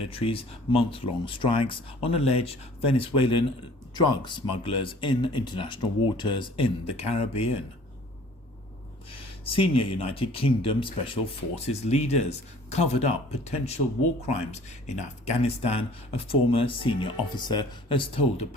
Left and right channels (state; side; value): normal; both; correlation 0.51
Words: month-long strikes on alleged Venezuelan drug smugglers in international waters in the Caribbean. Senior United Kingdom Special Forces leaders covered up potential war crimes in Afghanistan, a former senior officer has told a